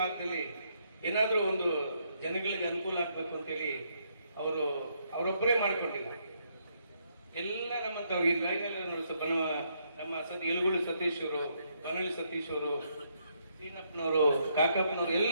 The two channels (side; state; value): both; inverted; correlation -0.74